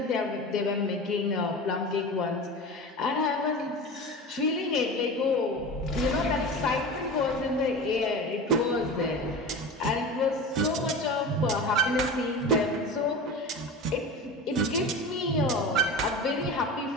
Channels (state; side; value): normal; both; correlation 0.30